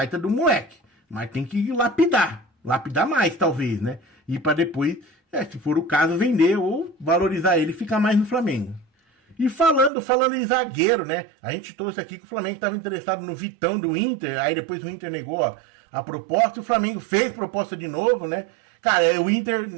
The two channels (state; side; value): drops out; left; at 9.9 s